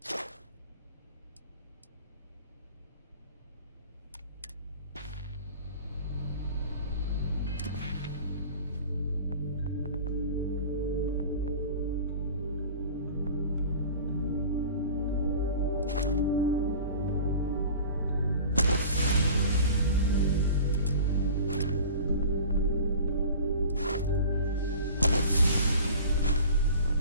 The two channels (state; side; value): inverted; both; correlation -0.41